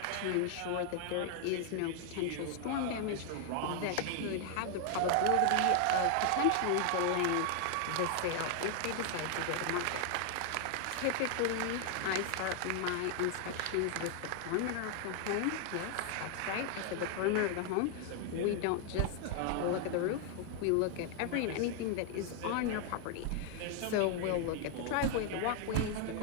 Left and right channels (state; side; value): different; both; correlation 0.00